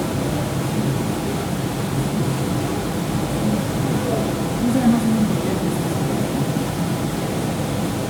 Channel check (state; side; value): identical; both; correlation 1.00